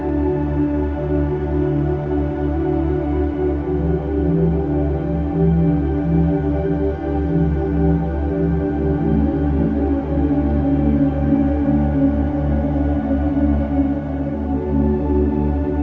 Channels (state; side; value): identical; both; correlation 1.00